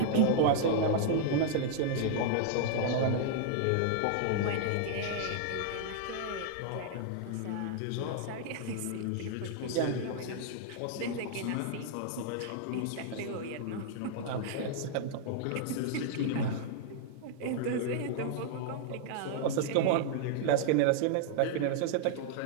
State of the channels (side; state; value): both; different; correlation -0.01